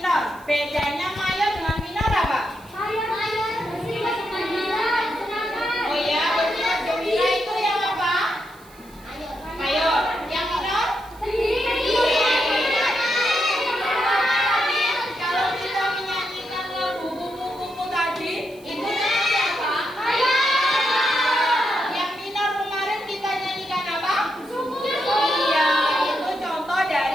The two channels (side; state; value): right; noise; hiss, 25 dB below the sound